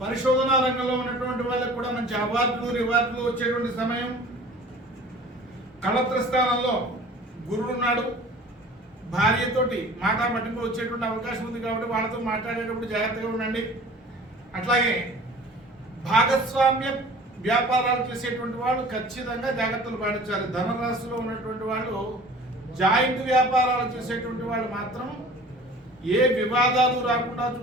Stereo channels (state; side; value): normal; both; correlation 0.45